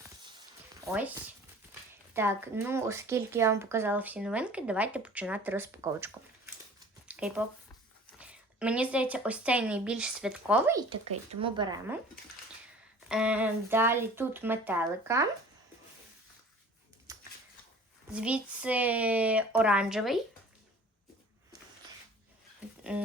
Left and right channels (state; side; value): normal; both; correlation 0.46